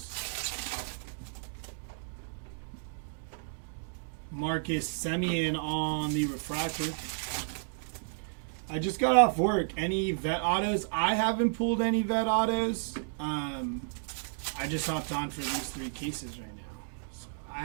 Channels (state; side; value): silent; left; digital silence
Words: Marcus Semien on the refractor. I just got off work. Any vet autos? I haven't pulled any vet autos. I just hopped on for these 3 cases right now. So I